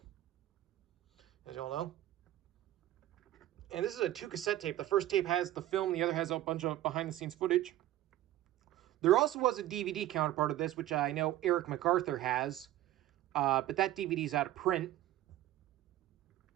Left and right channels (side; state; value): left; quieter; 13.9 dB